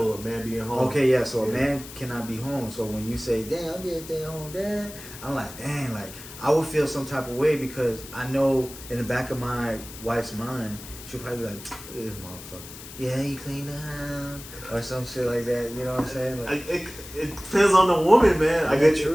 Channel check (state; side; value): noise; left; hiss, 14 dB below the sound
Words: a man being home. Okay, yeah. So a man cannot be home. So when you say, "Damn, I'm just stay home, dad," I'm like, "Dang, like I would feel some type of way because I know in the back of my wife's mind, she'll probably be like, this motherfucker. Yeah, you clean the house or some shit like that. You know what I'm saying? Like, it depends on the woman, man. I get